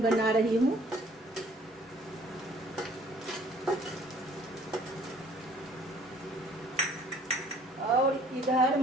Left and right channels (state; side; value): normal; both; correlation 0.57